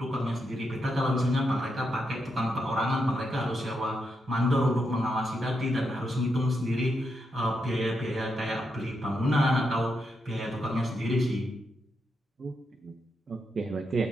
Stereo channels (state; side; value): normal; both; correlation 0.83